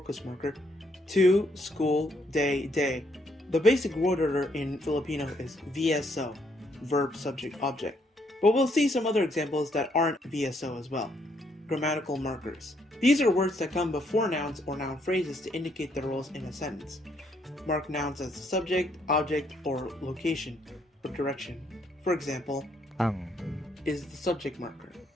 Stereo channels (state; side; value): normal; both; correlation 0.72